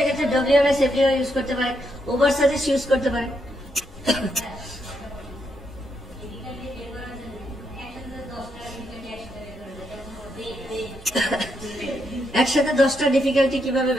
WMS API ইউজ করতে পারে, ওভারসাজেস্ট ইউজ করতে পারে। একসাথে 10টা ডিফিকাল্টি কিভাবে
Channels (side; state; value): both; normal; correlation 0.79